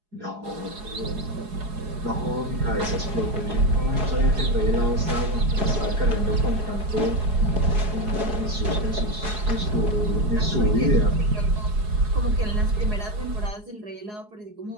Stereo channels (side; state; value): left; late; 4.8 ms